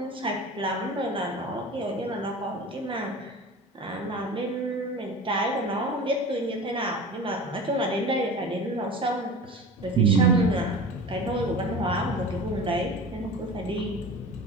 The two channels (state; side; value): normal; both; correlation 0.35